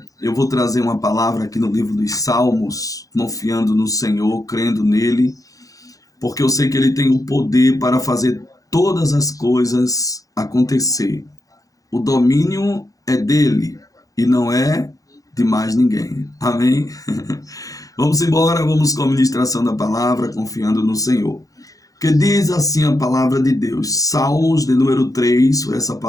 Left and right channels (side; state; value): right; late; 0.17 ms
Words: eu vou trazer uma palavra aqui no livro dos Salmos, confiando no Senhor, crendo nele, porque eu sei que ele tem o poder para fazer todas as coisas acontecer. O domínio é dele e não é de mais ninguém. Amém? Vamos embora, vamos com a ministração da palavra, confiando no Senhor. Que diz assim a palavra de Deus. Salmos de número 3, foi essa